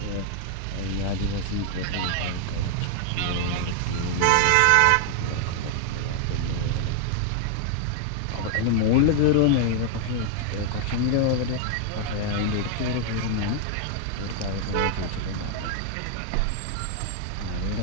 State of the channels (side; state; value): both; different; correlation 0.00